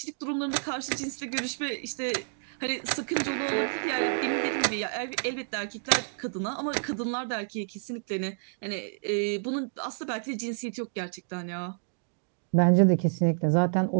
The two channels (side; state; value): left; silent; digital silence